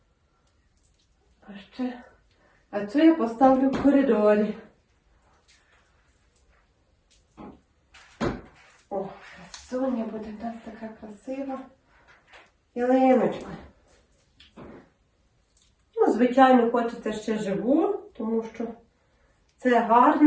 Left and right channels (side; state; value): both; identical; correlation 1.00